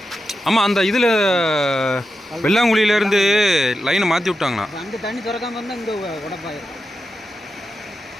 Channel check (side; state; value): both; normal; correlation 0.89